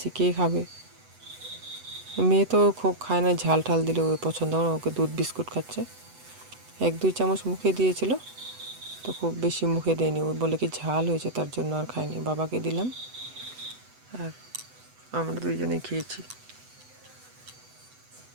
কে খাবে। মেয়ে তো খুব খায় না, ঝাল ঠাল দিলে ওই পছন্দ হয় না, ওকে দুধ বিস্কুট খাচ্ছে। 1-2 চামচ মুখে দিয়েছিল, তো খুব বেশি মুখে দেয়নি, ও বলে কি ঝাল হয়েছে তার জন্য আর খায়নি। বাবাকে দিলাম আর আমরা দুইজনেই খেয়েছি।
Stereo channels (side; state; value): left; late; 8.0 ms